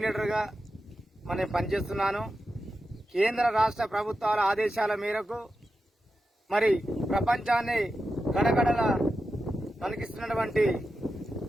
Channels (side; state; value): both; normal; correlation 0.90